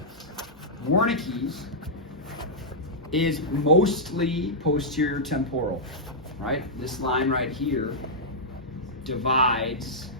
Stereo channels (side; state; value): both; normal; correlation -0.10